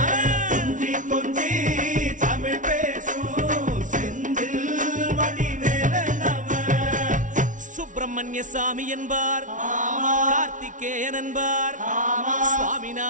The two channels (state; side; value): late; left; 0.37 ms